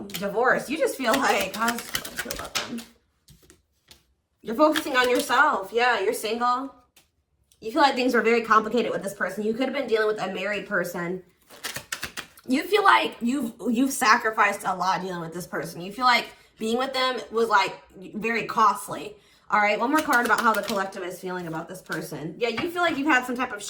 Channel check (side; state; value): both; identical; correlation 1.00